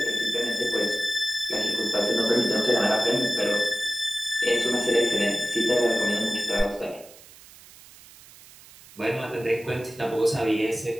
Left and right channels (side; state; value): right; noise; hiss, 22 dB below the sound